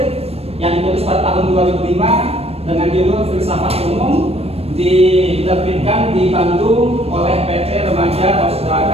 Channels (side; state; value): left; late; 0.29 ms